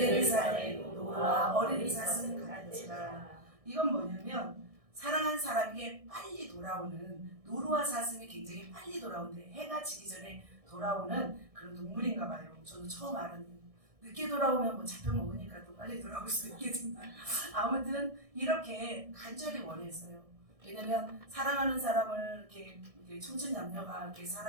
산에 노루와 어린이 사슴 같으라. 이건 뭐냐면 사랑한 사람에게 빨리 돌아오는 노루와 사슴이 굉장히 빨리 돌아오는데 해가 지기 전에 돌아오는 그런 동물인가 봐요. 저도 처음 알았는데 늦게 돌아오면 뭐 잡혀 먹으니까 또 빨리 돌아올 수 있겠지만 아무튼 이렇게 간절히 원했어요. 왜냐면 사랑하는 사람을 이렇게 청춘남녀가 이렇게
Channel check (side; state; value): left; late; 1.6 ms